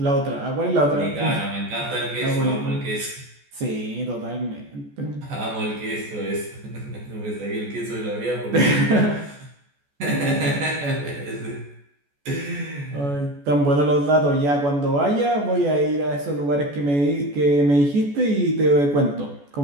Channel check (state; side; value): late; left; 14 ms